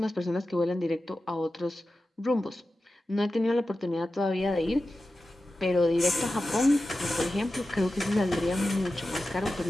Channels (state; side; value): normal; both; correlation 0.93